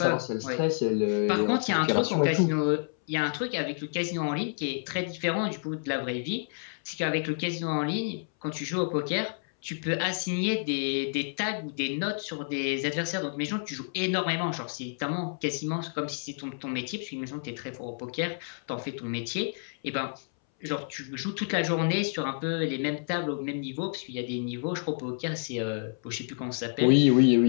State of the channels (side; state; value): right; silent; 58 dB below the other